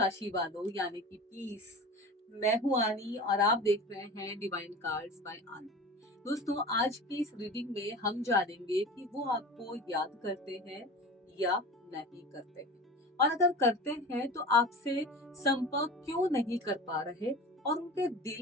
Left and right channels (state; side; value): normal; both; correlation 0.34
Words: वालों यानी कि पीस। मैं हूं आनी और आप देख रहे हैं डिवाइन कार्ड्स बाय आनी। दोस्तों, आज की इस रीडिंग में हम जानेंगे कि वो आपको याद करते हैं या नहीं करते हैं, और अगर करते हैं तो आपसे संपर्क क्यों नहीं कर पा रहे, और उनके